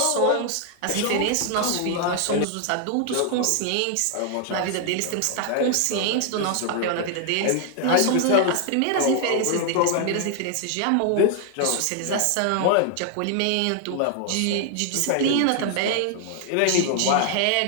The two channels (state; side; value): different; both; correlation 0.00